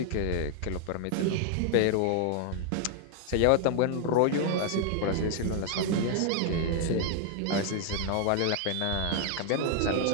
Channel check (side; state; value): both; different; correlation 0.00